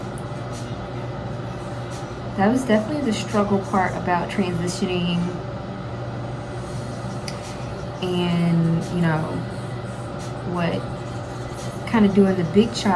That was definitely the struggle part about transitioning and, you know, what kind of doing the big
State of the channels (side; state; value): both; identical; correlation 1.00